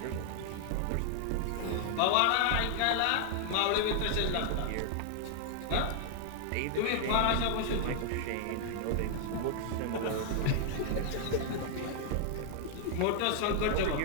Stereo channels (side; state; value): both; different; correlation -0.01